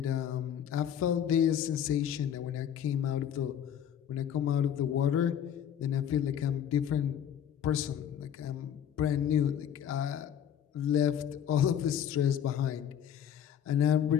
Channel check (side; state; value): right; quieter; 9.4 dB